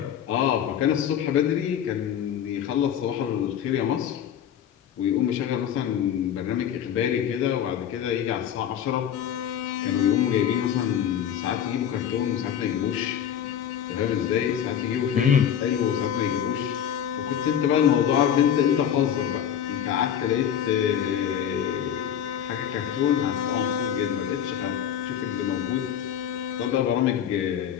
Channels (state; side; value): quieter; right; 9.4 dB